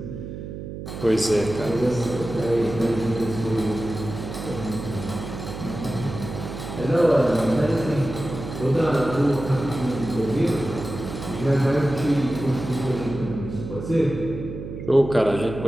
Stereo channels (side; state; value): right; noise; hum, 9 dB below the sound